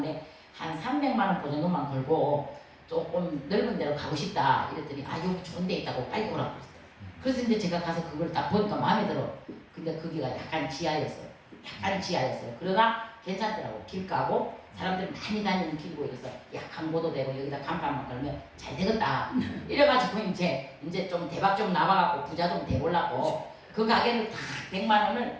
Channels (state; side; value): identical; both; correlation 1.00